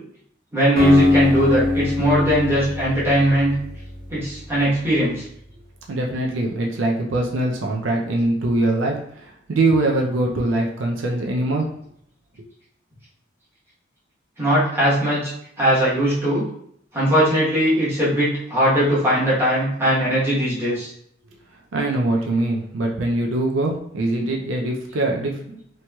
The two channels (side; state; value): both; normal; correlation 0.54